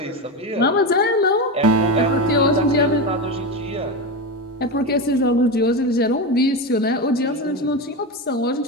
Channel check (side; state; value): both; normal; correlation 0.17